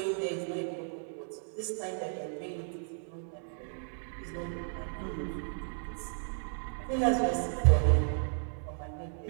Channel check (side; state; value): left; silent; digital silence